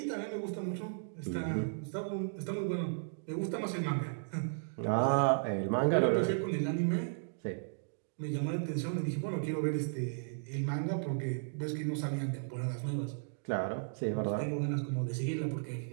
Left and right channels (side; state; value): left; silent; digital silence